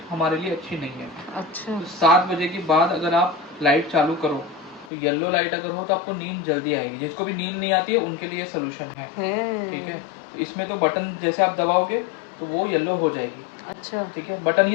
हमारे लिए अच्छी नहीं है। अच्छा। तो 7 बजे के बाद अगर आप लाइट चालू करो तो येलो लाइट अगर हो तो आपको नींद जल्दी आएगी। जिसको भी नींद नहीं आती है उनके लिए सोल्यूशन है, ठीक है। तो इसमें तो बटन जैसे आप दबाओगे तो वो येलो हो जाएगी। अच्छा, ठीक है, बटन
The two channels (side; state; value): right; drops out; at 4.9 s